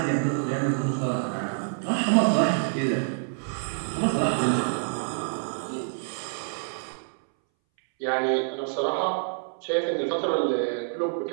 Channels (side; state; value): left; silent; 60 dB below the other